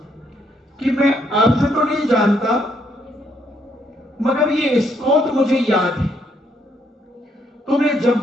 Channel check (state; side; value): normal; both; correlation 0.72